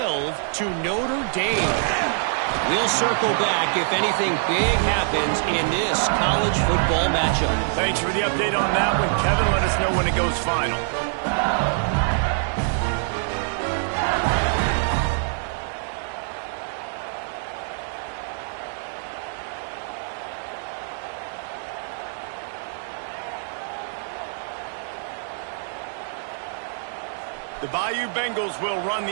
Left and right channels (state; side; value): silent; left; digital silence